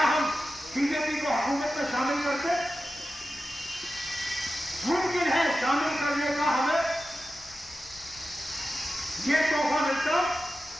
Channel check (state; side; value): noise; left; rumble, 23 dB below the sound